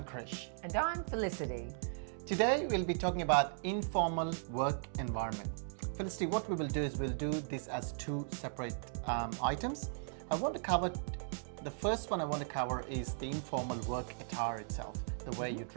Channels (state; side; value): silent; left; digital silence